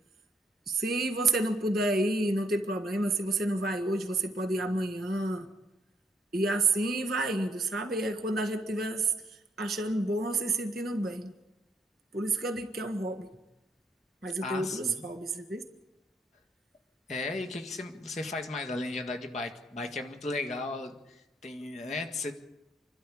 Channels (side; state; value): both; normal; correlation 0.71